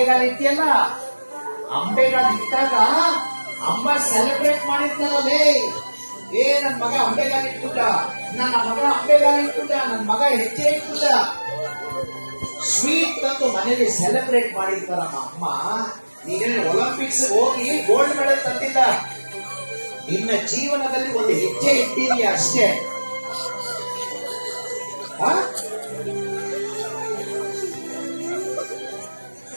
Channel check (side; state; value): both; inverted; correlation -1.00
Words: ಇಟ್ಟಿಯಲ್ಲ, ಅಂಬೆಗಾಲ ಇಟ್ಟಾಗ ಅಮ್ಮ ಸೆಲೆಬ್ರೇಟ್ ಮಾಡಿರ್ತಾರಲ್ಲೇ, ನನ್ ಮಗ ಅಂಬೆಗಾಲ ಇಟ್ಬಿಟ್ಟ, ನನ್ನ ಮಗ ಹೆಜ್ಜೆ ಇಟ್ಬಿಟ್ಟ, ಸ್ವೀಟ್ ತಂದು ಮನೇಲಿ ಸೆಲೆಬ್ರೇಟ್ ಮಾಡಿರ್ತಾರಮ್ಮ ಅಮ್ಮ. ನೀನೇನು ಒಲಿಂಪಿಕ್ಸ್ ಹೋಗಿ ಗೋಲ್ಡ್ ಮೆಡಲ್ ತಂದಿಲ್ಲ, ನಿನ್ನ ಜೀವನದಲ್ಲಿ ಒಂದು ಹೆಜ್ಜೆ ಇಟ್ಟಿದೀಯ ಅಷ್ಟೇ.